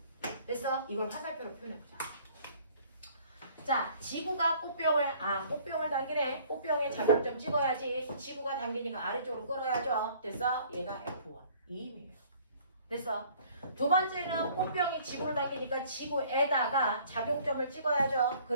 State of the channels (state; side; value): inverted; both; correlation -0.55